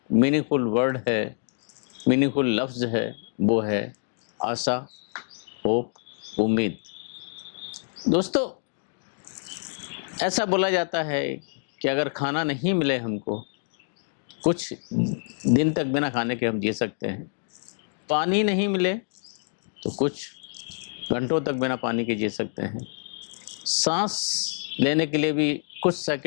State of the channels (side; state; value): right; silent; digital silence